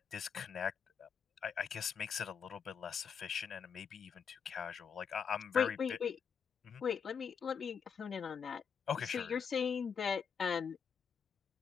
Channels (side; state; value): right; quieter; 6.9 dB